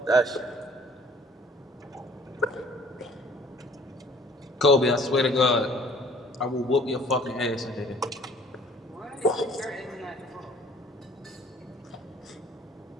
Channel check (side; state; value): both; normal; correlation 0.55